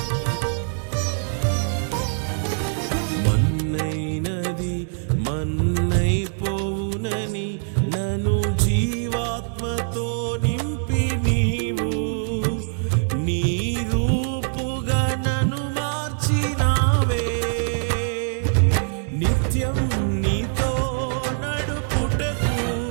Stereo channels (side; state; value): left; silent; digital silence